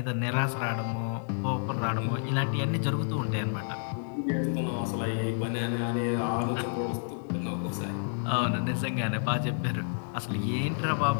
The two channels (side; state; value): right; silent; digital silence